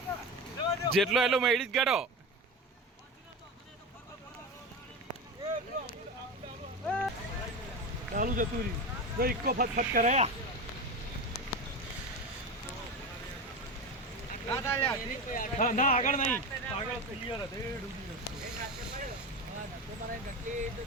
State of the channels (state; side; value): normal; both; correlation 0.23